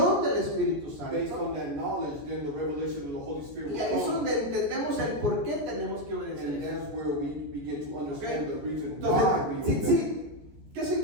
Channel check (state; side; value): late; left; 14 ms